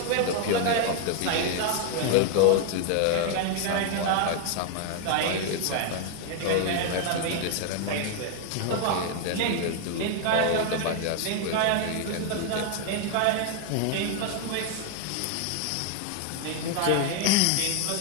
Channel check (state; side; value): different; both; correlation 0.00